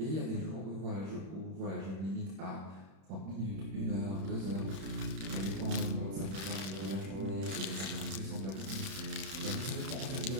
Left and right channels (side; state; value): left; late; 31 ms